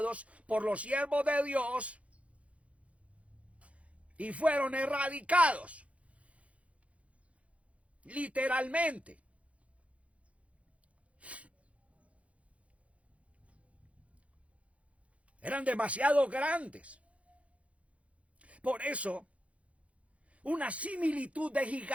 por los siervos de Dios y fueron erradicados, literalmente. Eran demasiado grandes. Por eso, una similitud de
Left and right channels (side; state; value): left; late; 0.064 ms